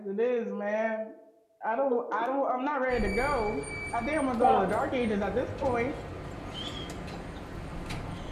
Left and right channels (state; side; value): identical; both; correlation 1.00